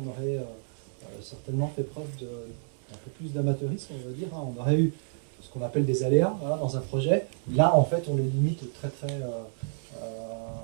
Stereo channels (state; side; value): silent; left; digital silence